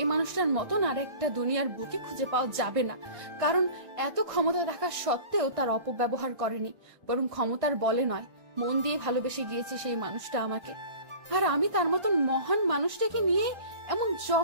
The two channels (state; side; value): late; left; 1.6 ms